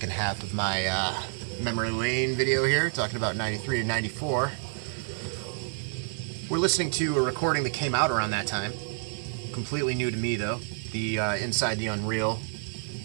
half of my memory lane video here, talking about 93 and 94. We're listening to a recording that came out around that time. Completely new to me, though. The Inside the Unreal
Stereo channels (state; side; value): silent; left; 59 dB below the other